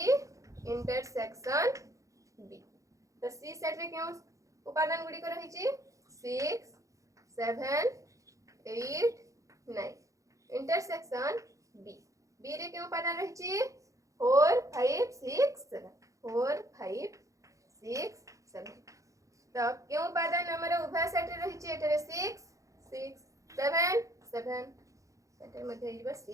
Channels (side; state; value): left; late; 0.16 ms